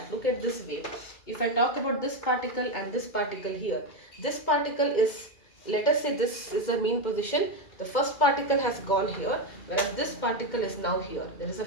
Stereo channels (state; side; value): late; right; 2.4 ms